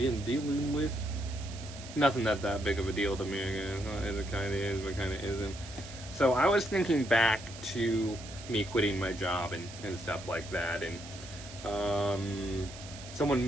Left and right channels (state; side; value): noise; right; hiss, 14 dB below the sound